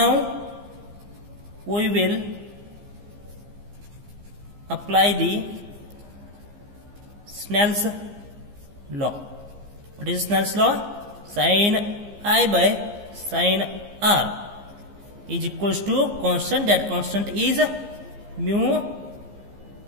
we will apply the Snell's law. What is Snell's law? Sine I by sine R is equals to constant. That constant is mu,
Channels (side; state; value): left; late; 15 ms